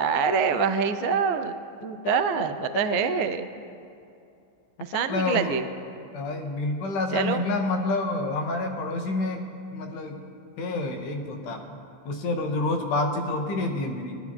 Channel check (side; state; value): right; late; 15 ms